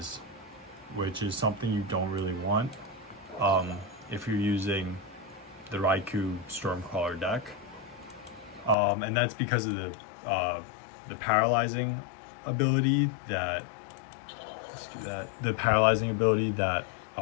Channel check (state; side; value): drops out; right; at 8.8 s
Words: which is something you don't really want if you're using the Raikou Stormcaller deck, and that's because of the paralyzing ability that